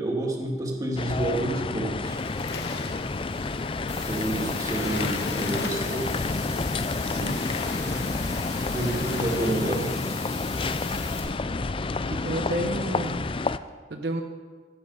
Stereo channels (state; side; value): normal; both; correlation 0.52